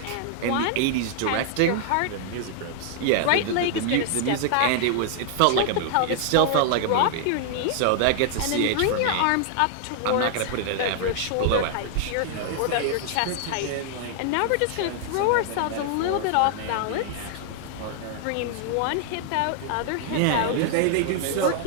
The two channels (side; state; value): both; different; correlation -0.01